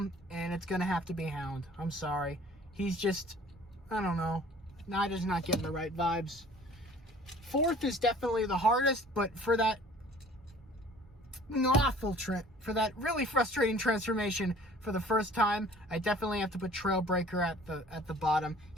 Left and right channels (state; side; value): normal; both; correlation 0.50